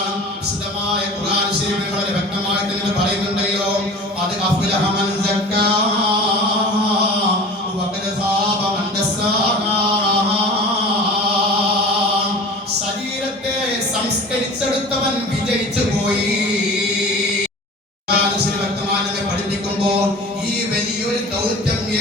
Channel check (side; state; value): both; normal; correlation 0.39